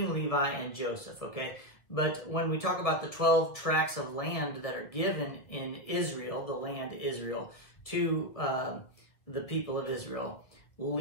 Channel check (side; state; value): right; late; 1.5 ms